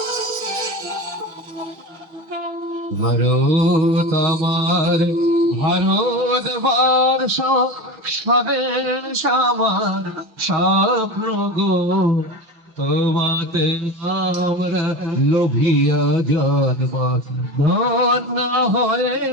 ভারত আমার, ভারত বর্ষ, স্বদেশ আমার স্বপ্ন গো, তোমাতে আমরা লোভিয়া জন্ম, ধন্য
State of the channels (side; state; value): left; late; 5.9 ms